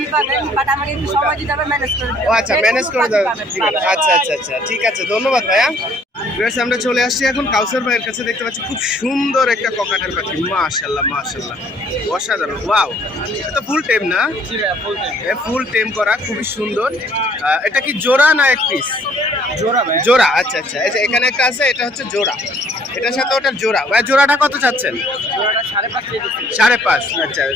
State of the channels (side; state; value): both; normal; correlation 0.61